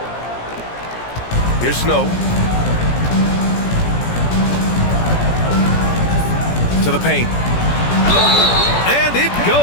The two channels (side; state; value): right; late; 17 ms